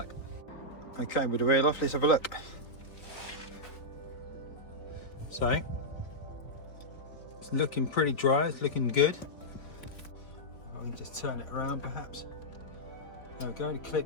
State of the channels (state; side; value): late; right; 4.2 ms